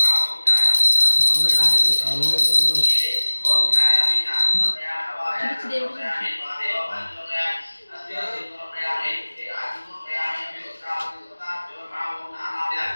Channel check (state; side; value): inverted; both; correlation -1.00